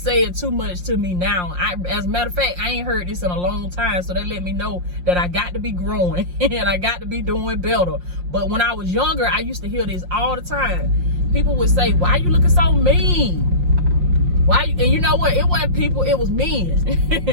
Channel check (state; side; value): late; left; 5.6 ms